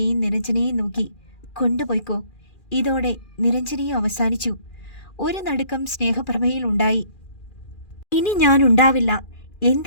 നിരഞ്ജനയെയും നോക്കി. കൊണ്ടുപോയിക്കോ. ഇതോടെ നിരഞ്ജനയും അവസാനിച്ചു. ഒരു നടുക്കം സ്നേഹപ്രഭയിൽ ഉണ്ടായി. ഇനി ഞാൻ ഉണ്ടാവില്ല.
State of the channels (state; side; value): late; right; 2.4 ms